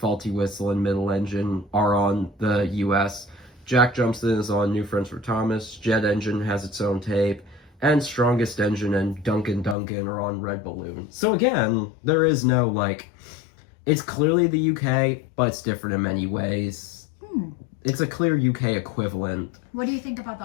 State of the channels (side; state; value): right; drops out; at 9.8 s